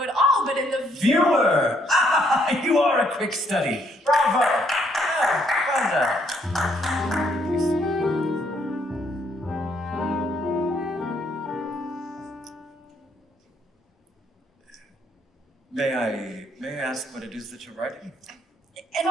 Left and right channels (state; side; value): normal; both; correlation 0.70